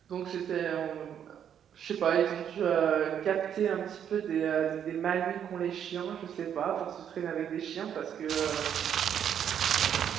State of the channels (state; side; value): quieter; left; 9.0 dB